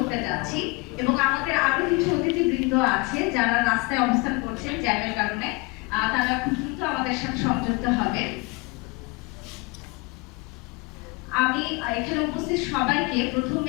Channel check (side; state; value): right; quieter; 25.6 dB